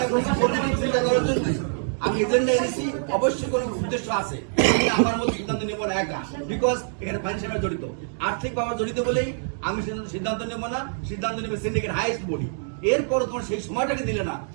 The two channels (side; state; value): left; silent; digital silence